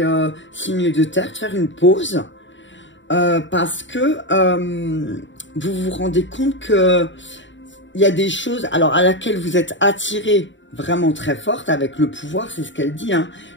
signe de terre, de faire une pause. Parce que vous vous rendez compte que il y a des choses alors à laquelle vous êtes attiré vraiment très forte avec le pouvoir, c'est ce qu'elle dit, hein,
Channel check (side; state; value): right; late; 0.54 ms